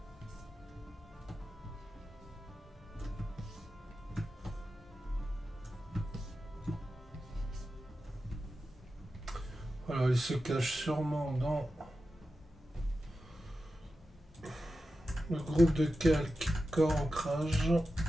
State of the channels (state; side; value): normal; both; correlation 0.92